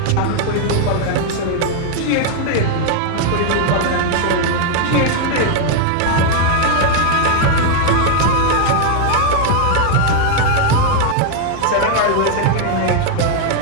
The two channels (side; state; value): both; different; correlation 0.00